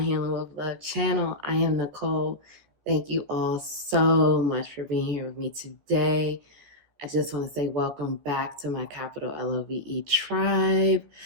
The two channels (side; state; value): left; late; 14 ms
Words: Healing with Love channel. I am Nicole. Thank you all so much for being here with me today. I just want to say welcome back to my capital LOVE tribe.